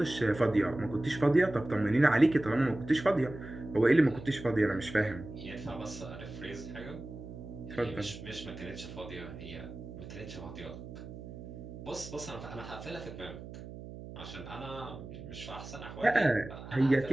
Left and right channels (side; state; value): right; noise; hum, 12 dB below the sound